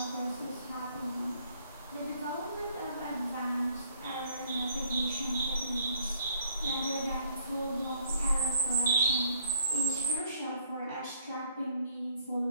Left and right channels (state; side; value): inverted; both; correlation -0.65